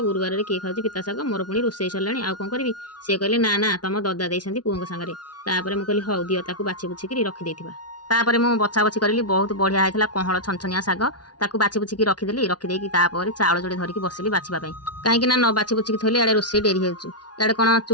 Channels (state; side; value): late; right; 0.69 ms